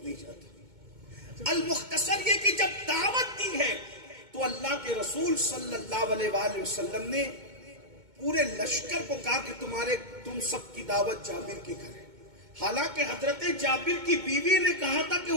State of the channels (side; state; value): left; late; 2.2 ms